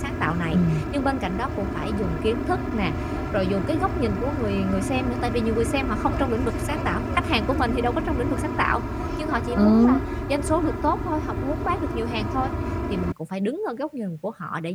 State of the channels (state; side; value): identical; both; correlation 1.00